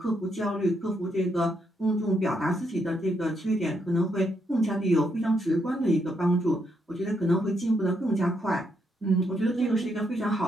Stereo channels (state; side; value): normal; both; correlation 0.77